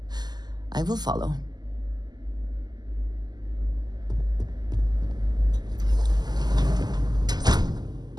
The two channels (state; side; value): late; left; 0.20 ms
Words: I will follow.